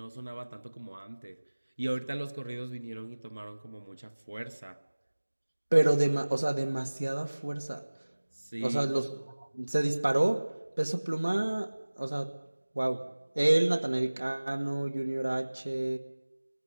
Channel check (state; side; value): inverted; both; correlation -1.00